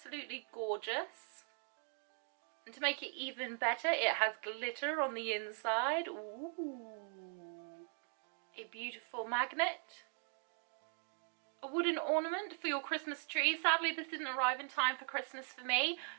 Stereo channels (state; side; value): silent; left; 51 dB below the other